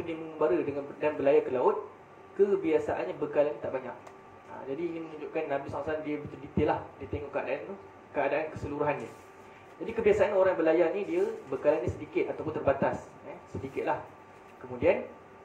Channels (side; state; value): both; identical; correlation 1.00